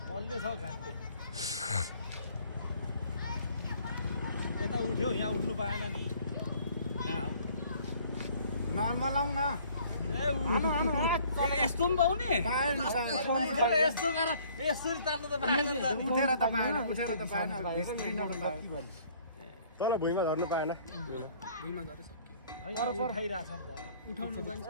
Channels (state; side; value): inverted; both; correlation -0.57